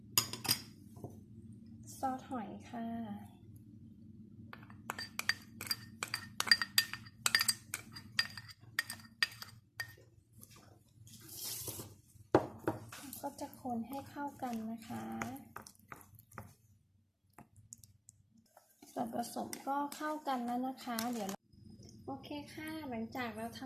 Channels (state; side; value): identical; both; correlation 1.00